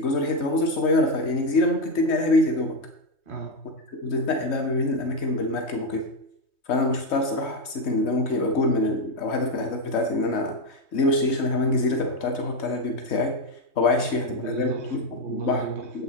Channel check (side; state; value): right; late; 3.2 ms